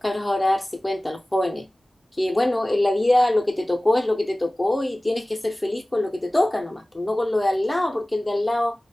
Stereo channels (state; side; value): normal; both; correlation 0.98